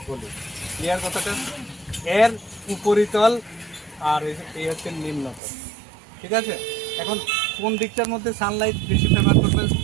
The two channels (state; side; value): drops out; left; at 5.4 s